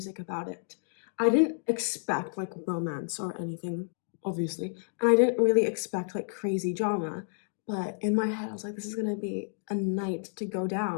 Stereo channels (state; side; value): silent; right; digital silence